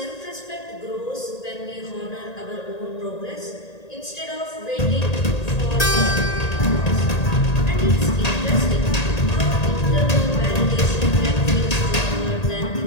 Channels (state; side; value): late; right; 1.8 ms